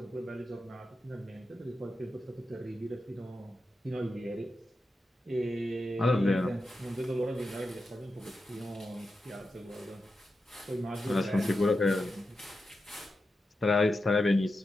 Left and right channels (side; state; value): both; normal; correlation 0.89